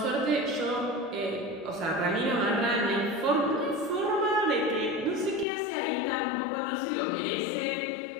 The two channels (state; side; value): drops out; right; at 5.5 s